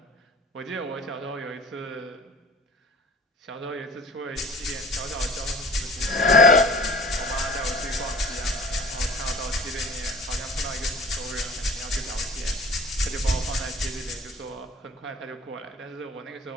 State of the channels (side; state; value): both; normal; correlation 0.45